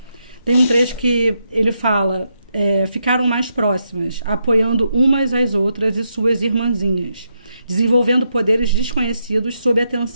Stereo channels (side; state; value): both; inverted; correlation -0.82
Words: Tem um trecho que ele fala, ficaram mais próximas, apoiando umas às outras e suas irmãzinhas, desenvolvendo poderes desconhecidos sob a